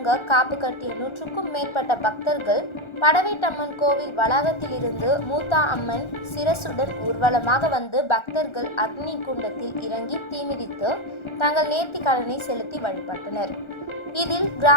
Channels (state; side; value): late; right; 1.4 ms